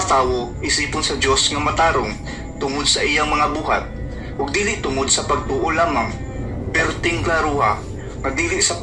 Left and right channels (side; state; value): both; identical; correlation 1.00